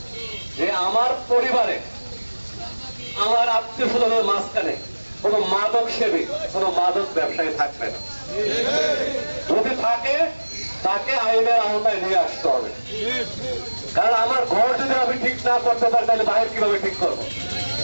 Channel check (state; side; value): inverted; both; correlation -1.00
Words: যে আমার পরিবারে, আমার আত্মীয় স্বজনের মাঝখানে কোন মাদক সেবী, কোন মাদক ব্যবসায়ী থাকবে না। যদি থাকে তাকে আইনের আওতায় নিয়ে আসতে হবে। কারণ আমার ঘর যদি আমি ঠিক না করতে পারি তাহলে বাইরে কিভাবে ঠিক করবো?